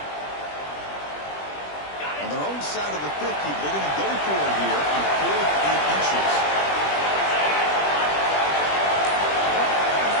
On their own side of the 50, they're going to go for it here on 4th and inches.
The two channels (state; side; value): late; right; 20 ms